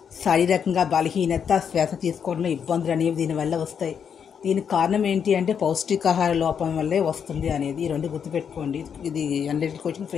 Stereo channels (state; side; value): quieter; right; 7.4 dB